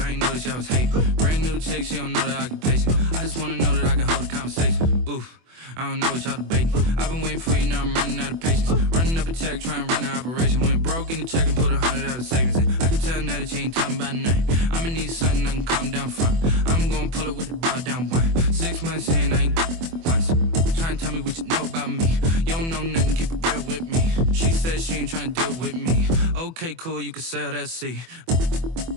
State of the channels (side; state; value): left; late; 24 ms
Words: ain't noticed y'all was hating. Brand new chick, she don't know that I get patient. I just wanna know that I can hold a conversation. Oof, I don't know what y'all debating. I've been waiting for you, now I'm running out of patience. Running up a check, trying to run an operation. Went broke in the check and put 100 out of savings in. I can tell now that you ain't talking about nothing. I'ma need something I can calm down from. I'm gonna pull it with the bar down one. 6 months in, I ain't once. Trying to tell me what you know about me. You don't know nothing, keep it real with me. She said she ain't trying to deal with me. Okay, cool, you can sell that seat.